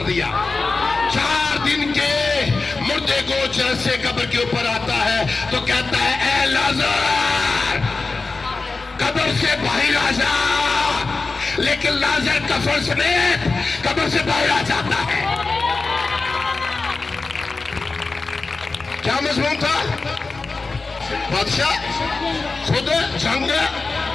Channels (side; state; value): right; quieter; 3.8 dB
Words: दिया? 4 दिन के मुर्दे को जैसे कब्र के ऊपर आता है तो कहता है, ए लाजर कब्र से बाहर आ जा। लेकिन लाजर कफन समेत कब्र से बाहर आ जाता है। क्या मजमून था? बादशाह खुद जंग